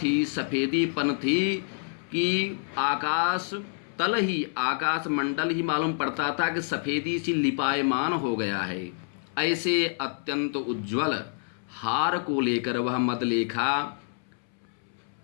सफ़ेदीपन थी कि आकाश तल ही, आकाश मंडल ही मालूम पड़ता था कि सफ़ेदी सी लिपायमान हो गया है। ऐसे अत्यंत उज्ज्वल हार को लेकर वह मदलेखा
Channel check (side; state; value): right; silent; 60 dB below the other